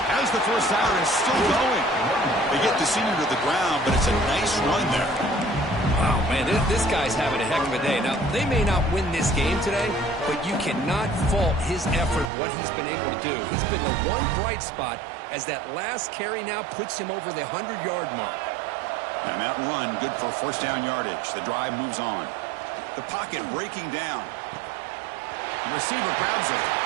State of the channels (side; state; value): left; drops out; at 12.3 s